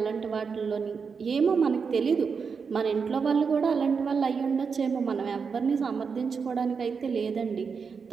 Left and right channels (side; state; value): left; quieter; 5.7 dB